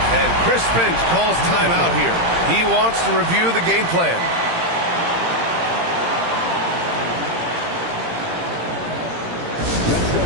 And Chris Finch calls timeout here. He wants to review the game plan. Let's go,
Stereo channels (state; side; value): late; left; 18 ms